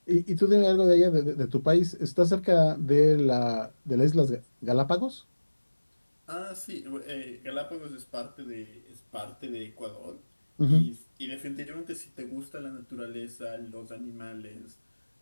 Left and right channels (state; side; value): inverted; both; correlation -1.00